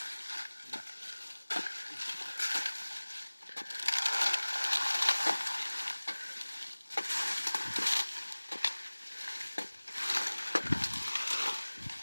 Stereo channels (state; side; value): inverted; both; correlation -1.00